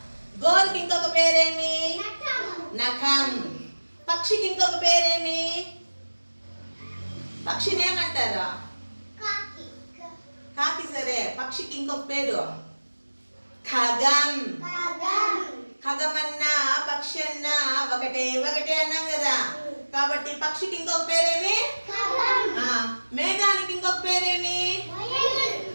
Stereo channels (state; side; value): inverted; both; correlation -1.00